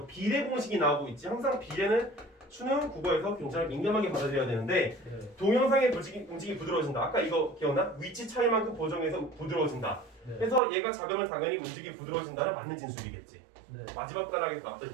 비례 공식이 나오고 있지. 항상 비례는 수능 국어에서 굉장히 민감하게 받아들여야 되는데 네. 동영상의 움직임이 부드러워진다. 아까 이거 기억나? 위치 차이만큼 보정해서 부드러워진다. 네. 그래서 얘가 작으면 당연히 움직임이 부드러워진다는 맞는 진술이겠지. 네. 마지막 단락에서 나왔던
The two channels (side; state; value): left; drops out; at 10.6 s